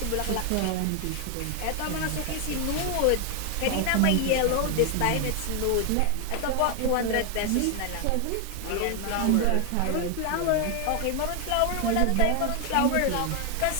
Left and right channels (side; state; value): both; different; correlation 0.00